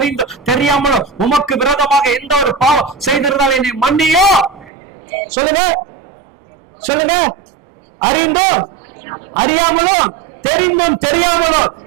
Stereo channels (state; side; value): drops out; left; at 4.7 s